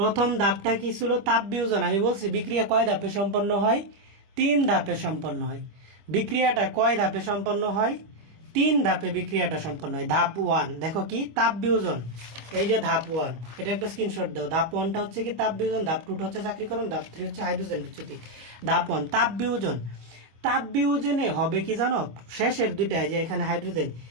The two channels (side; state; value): left; late; 25 ms